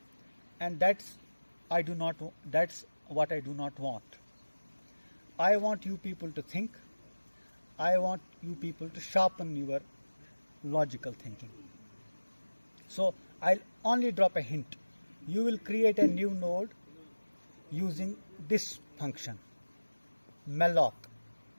and that's what I do not want. I want you people to think. I want you people to sharpen your logical thinking. So I'll only drop a hint. You will create a new node using this function, malloc,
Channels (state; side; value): inverted; both; correlation -1.00